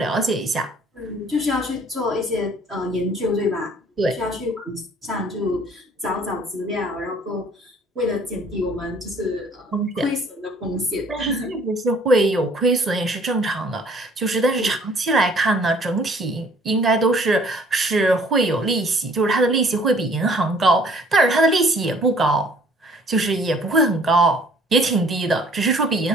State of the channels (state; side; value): normal; both; correlation 0.57